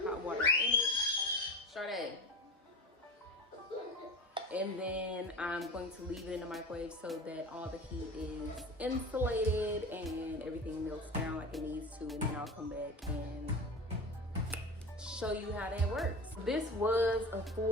water in it. Sade. And then I'm going to leave it in the microwave so that all the heat is insulated and everything melts down like it needs to, and then I'll come back and show you how that works. This was a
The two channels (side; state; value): both; normal; correlation 0.30